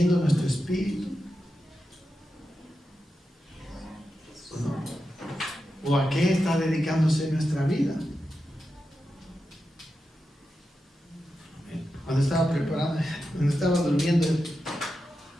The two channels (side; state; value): both; normal; correlation 0.89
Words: nuestro espíritu? ¿O no? ¿O a qué está dedicándose nuestra vida? Cuando estaba preparando, cuando estaba durmiendo